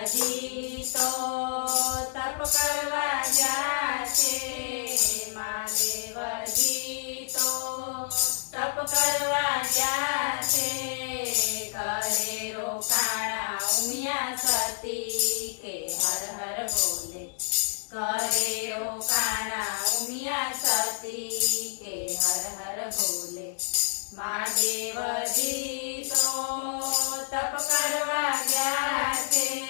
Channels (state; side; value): silent; right; digital silence